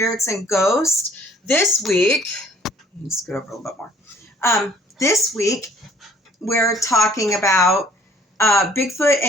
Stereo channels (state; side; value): normal; both; correlation 0.58